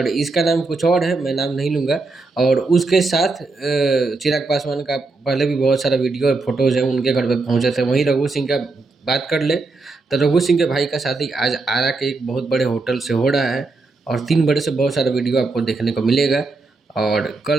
इसका नाम कुछ और है, मैं नाम नहीं लूँगा। और उसके साथ चिराग पासवान का पहले भी बहुत सारा वीडियो और फोटोज़ हैं, उनके घर पे पहुंचे थे। वहीं रघु सिंह का बात कर ले तो रघु सिंह के भाई का शादी आज आरा के एक बहुत बड़े होटल से हो रहा है और 3 बड़े से बहुत सारा वीडियो आपको देखने को मिलेगा। और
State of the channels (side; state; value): left; quieter; 3.6 dB